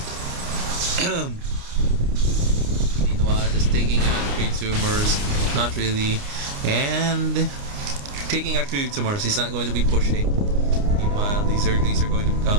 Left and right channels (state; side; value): late; left; 29 ms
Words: Meanwhile, just taking out creep tumors, not really, and taking out creep tumors. He's not going to be pushing. Meanwhile, these Zerglings are going to be